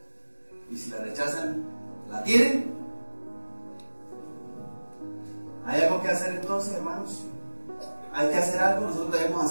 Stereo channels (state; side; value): inverted; both; correlation -1.00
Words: Y si la rechazan, ¿la tienen? ¿Hay algo que hacer entonces, hermanos? ¿Hay que hacer algo? ¿Nosotros debemos